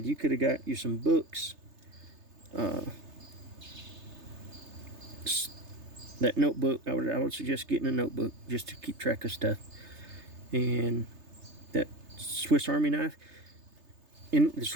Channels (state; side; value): late; left; 3.3 ms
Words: you could have got you some books, that notebook. I would suggest getting a notebook just to keep track of stuff, and that Swiss Army knife. And the